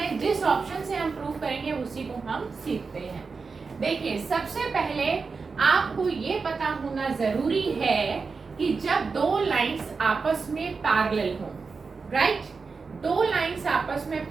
जिस ऑप्शन से हम प्रूफ करेंगे उसी को हम सीखते हैं। देखिए, सबसे पहले आपको ये पता होना जरूरी है कि जब दो लाइंस आपस में पैरेलल हो, राइट, दो लाइंस आपस में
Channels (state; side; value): quieter; left; 4.7 dB